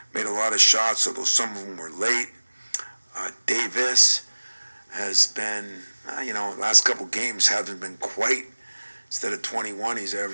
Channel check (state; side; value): inverted; both; correlation -1.00